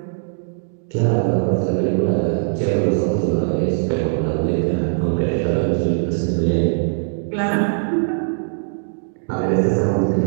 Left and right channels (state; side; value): silent; left; digital silence